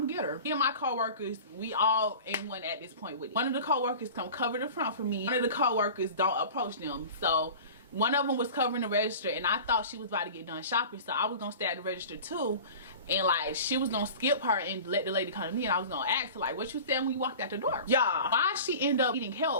gonna get her. Me and my coworkers, we all in one at this point with it. One of the coworkers come cover the front for me. One of the coworkers don't approach them. So one of them was covering the register, and I thought she was about to get done shopping, so I was gonna stay at the register too, and like she was gonna skip her and let the lady come to me, and I was gonna ask her like, what you said when you walked out the door? Yeah, why she end up eating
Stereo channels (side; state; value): both; inverted; correlation -0.38